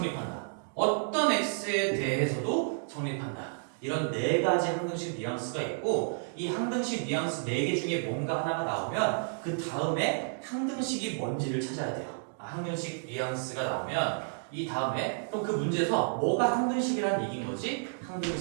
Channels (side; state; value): left; silent; digital silence